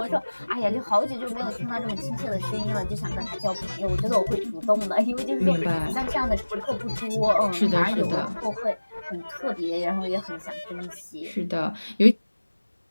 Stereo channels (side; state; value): both; inverted; correlation -1.00